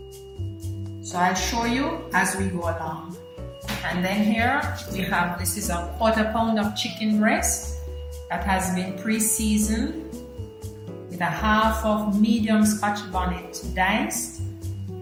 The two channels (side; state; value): both; identical; correlation 1.00